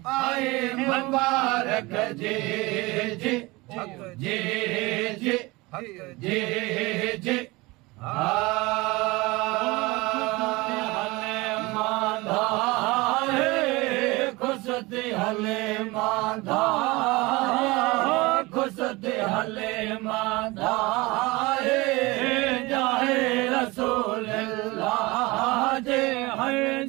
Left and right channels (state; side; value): quieter; left; 22.9 dB